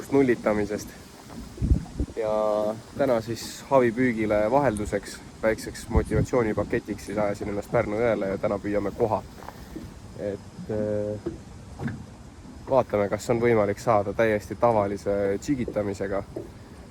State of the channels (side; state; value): both; identical; correlation 1.00